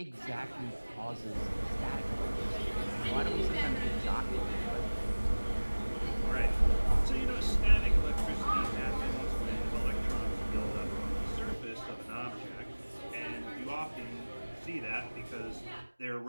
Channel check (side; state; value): both; inverted; correlation -1.00